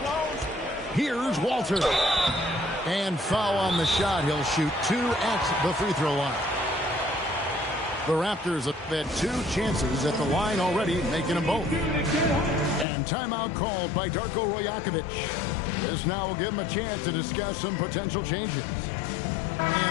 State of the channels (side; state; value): right; drops out; at 12.9 s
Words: Here's Walter. And foul on the shot. He'll shoot 2 at the free throw line. The Raptors have had 2 chances at the line already, making them both. And timeout called by Darko Rajakovic. This now will give him a chance to discuss some potential changes.